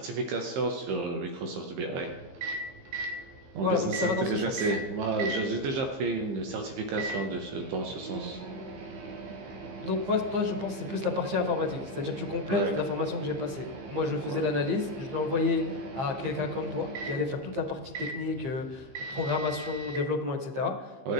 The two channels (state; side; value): late; left; 15 ms